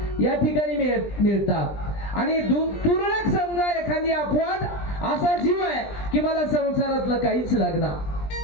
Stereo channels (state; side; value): late; right; 20 ms